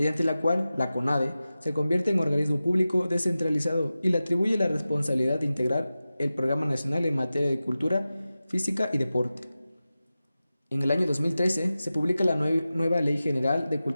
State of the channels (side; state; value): both; inverted; correlation -0.94